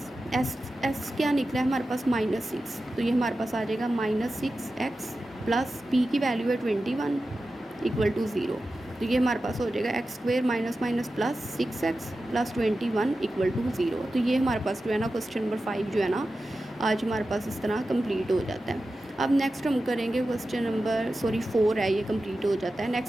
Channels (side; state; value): both; normal; correlation 0.93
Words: s क्या निकला है हमारे पास -6, तो ये हमारे पास आ जाएगा -6x प्लस p की वैल्यू है 21 = 0। तो ये हमारे पास हो जाएगा x² - प्लस 6x प्लस 21 = 0। तो ये हमारे पास जो है ना क्वेश्चन नंबर 5 जो है ना आज हमारे पास इस तरह कंप्लीट हो जाता है। अब नेक्स्ट हम करेंगे क्वेश्चन नंबर 4 है, ये कंप्लीट हो जाता है।